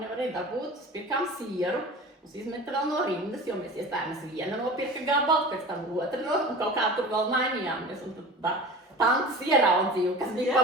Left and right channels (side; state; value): both; normal; correlation 0.36